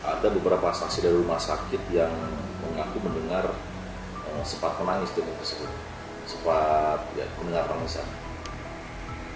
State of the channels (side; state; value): both; identical; correlation 1.00